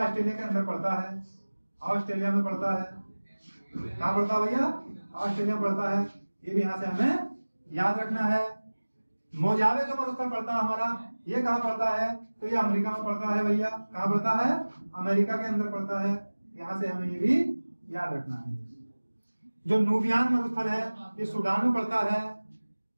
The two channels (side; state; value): both; inverted; correlation -1.00